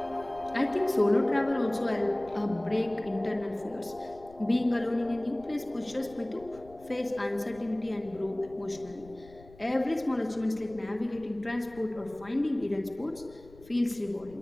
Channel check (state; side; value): noise; left; rumble, 22 dB below the sound